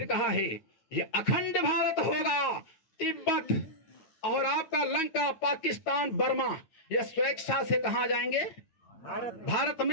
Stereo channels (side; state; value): right; late; 9.3 ms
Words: कहा है ये अखंड भारत होगा। तिब्बत और आपका लंका, पाकिस्तान, बर्मा, ये स्वेच्छा से कहाँ जाएंगे? भारत